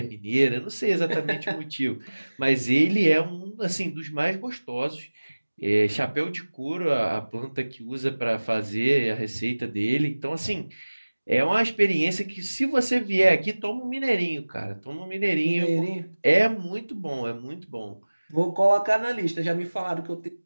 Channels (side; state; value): both; inverted; correlation -1.00